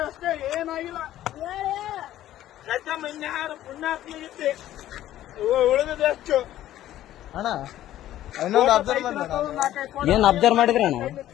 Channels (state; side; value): quieter; right; 13.2 dB